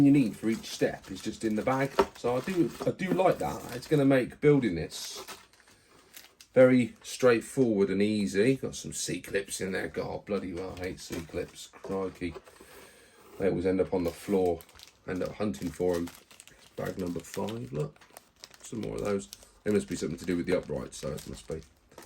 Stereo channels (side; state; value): both; identical; correlation 1.00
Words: you need for each step is just in the bag. So I do like that. It's going to make building this very straightforward and easy. Got some C-clips in there. God, bloody well, I hate C-clips. Crikey. They always end up on the floor. End up hunting for them. Bag number 5, look. Some more of those. They must be something to do with the uprights, so it must be.